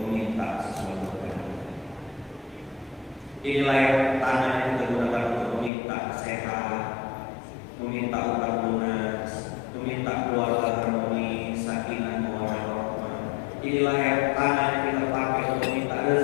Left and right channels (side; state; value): right; drops out; at 5.7 s